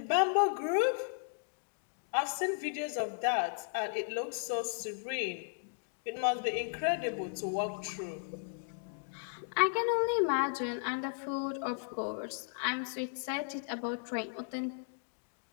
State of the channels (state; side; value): silent; right; digital silence